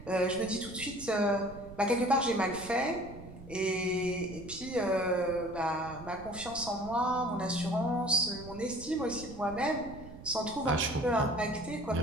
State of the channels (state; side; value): noise; right; rumble, 15 dB below the sound